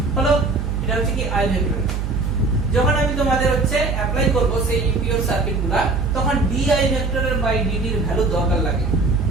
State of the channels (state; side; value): noise; right; hum, 2 dB below the sound